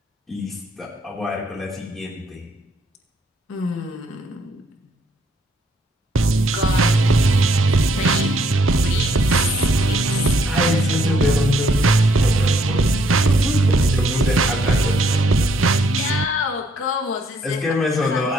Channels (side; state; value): both; normal; correlation 0.69